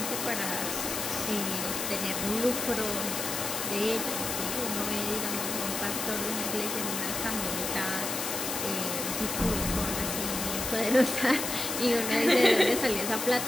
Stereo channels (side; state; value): left; noise; hiss, 3 dB below the sound